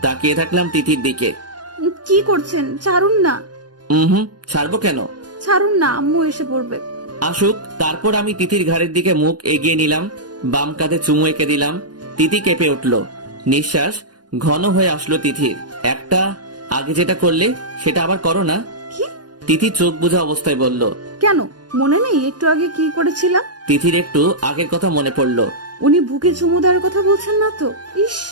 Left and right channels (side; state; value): left; late; 0.69 ms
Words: তাকিয়ে থাকলাম তিথির দিকে। কি করছেন? ছাড়ুন না। ছাড়বো কেন? ছাড়ুন না, আম্মু এসে পড়বে। আসুক, তারপর আমি তিথির ঘাড়ের দিকে মুখ এগিয়ে নিলাম, বাম কাঁধে চুমু এঁকে দিলাম। তিথি কেঁপে উঠল, নিঃশ্বাস ঘন হয়ে আসলো তিথির। একটা, আগে যেটা করলে সেটা আবার করো না। কি? তিথি চোখ বোঝা অবস্থায় বলল। কেন মনে নেই একটু আগে কি করেছিলাম? তিথির একটু আগের কথা মনে পড়লো। উনি বুকে চুমু দেওয়ার কথা বলছেন না তো? ইস,